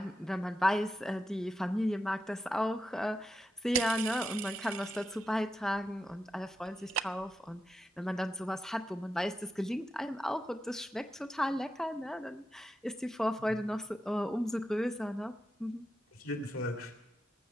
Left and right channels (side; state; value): both; normal; correlation 0.88